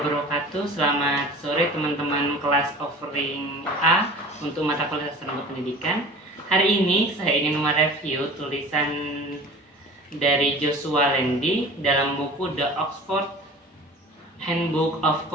wabarakatuh. Selamat sore teman-teman kelas offering A untuk mata kuliah Sastra Pendidikan. Hari ini saya ingin mereview tulisan dari Joshua Landy dalam buku The Oxford Handbook of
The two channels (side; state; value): both; normal; correlation 0.41